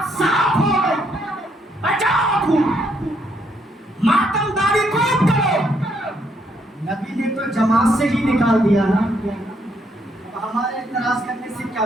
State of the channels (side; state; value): both; normal; correlation 0.73